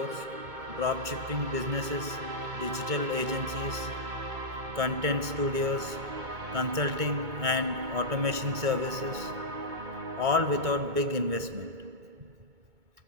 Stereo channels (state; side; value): late; left; 2.2 ms